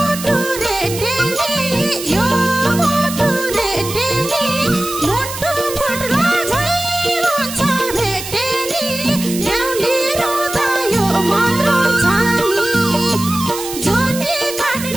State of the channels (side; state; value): right; noise; hiss, 9 dB below the sound